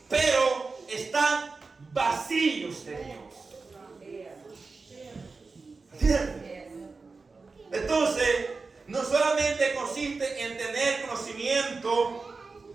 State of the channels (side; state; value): left; quieter; 4.1 dB